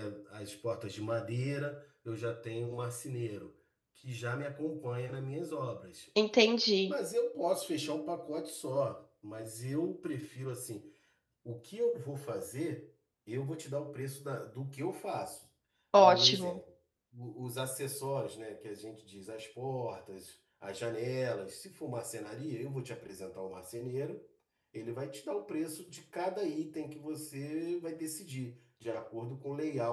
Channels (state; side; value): identical; both; correlation 1.00